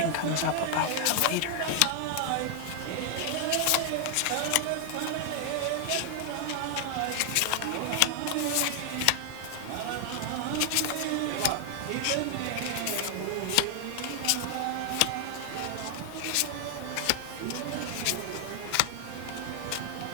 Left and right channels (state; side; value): different; both; correlation 0.00